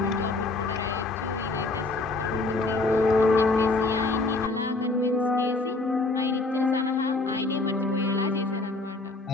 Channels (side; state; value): right; quieter; 3.3 dB